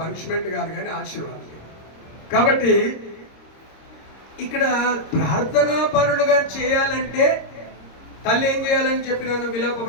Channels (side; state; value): right; late; 26 ms